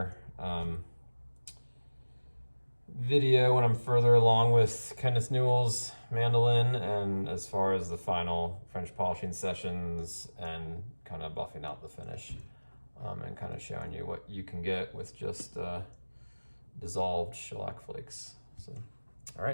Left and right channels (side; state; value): both; inverted; correlation -1.00